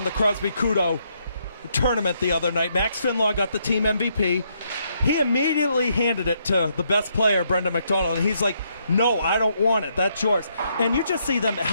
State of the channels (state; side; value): inverted; both; correlation -0.75